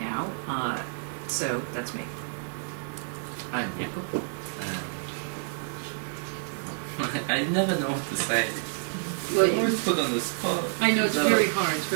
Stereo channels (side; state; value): left; silent; digital silence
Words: So that's me. I'm Jakob. I never know what to say. Well, You're always put on the spot. I know it's So, very hard. It's